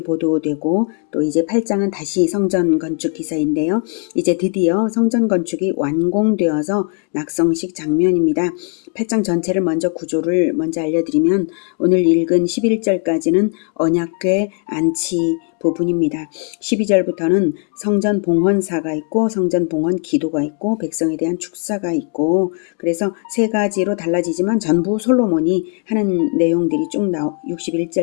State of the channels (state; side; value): quieter; right; 37.9 dB